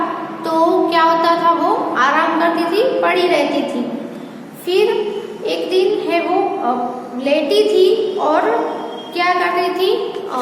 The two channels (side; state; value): both; identical; correlation 1.00